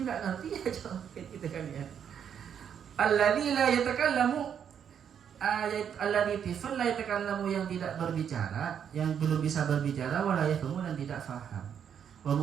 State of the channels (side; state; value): left; quieter; 8.3 dB